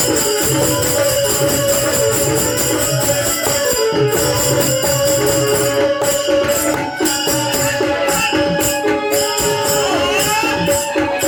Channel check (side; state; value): both; identical; correlation 1.00